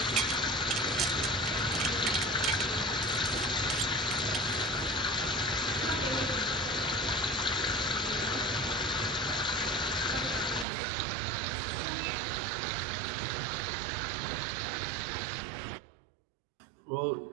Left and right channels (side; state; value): left; drops out; at 10.7 s